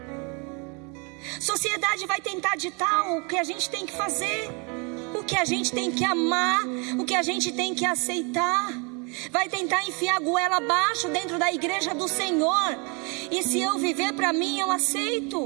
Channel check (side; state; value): left; quieter; 32.3 dB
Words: Sociedade vai tentar ditar o que a gente tem que fazer, o que a gente tem que amar, o que a gente tem que aceitar. Vai tentar enfiar a goela abaixo dentro da igreja do Senhor. E se eu viver para mim, eu